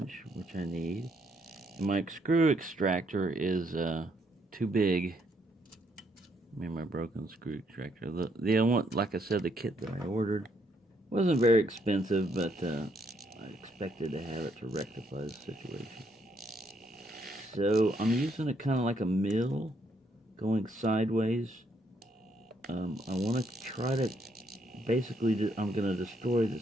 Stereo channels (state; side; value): normal; both; correlation 0.73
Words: which I need. And my screw extractor is too big. I mean, my broken screw extractor. The one, like I said, the kit that I ordered wasn't very expensive, but I expected to have it to rectify the situation. So I'm using it kind of like a mill, going sideways. I want to try to, basically, I'm going to destroy